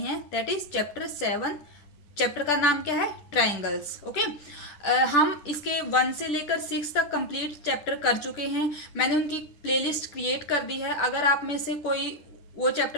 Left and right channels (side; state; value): right; late; 10 ms